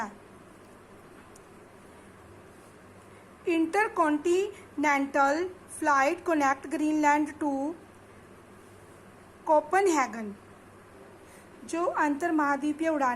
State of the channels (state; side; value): identical; both; correlation 1.00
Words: Intercontinental flight connect Greenland to Copenhagen. जो अंतर महाद्वीपीय